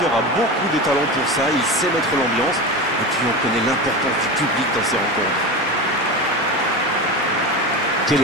a beaucoup de talent pour ça, il sait mettre l'ambiance. Et puis on connaît l'importance du public dans ces rencontres. Quelle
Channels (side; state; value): both; normal; correlation 0.24